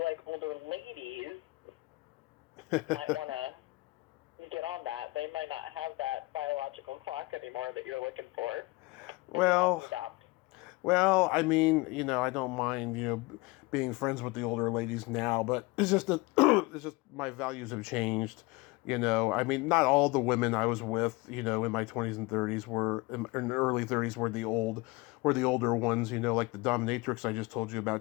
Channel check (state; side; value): quieter; right; 23.2 dB